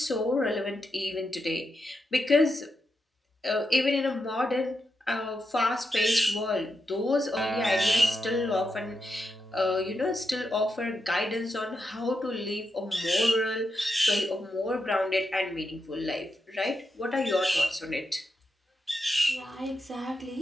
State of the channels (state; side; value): normal; both; correlation 0.86